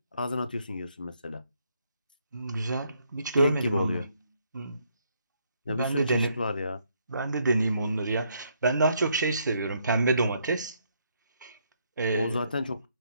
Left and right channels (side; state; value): both; inverted; correlation -0.72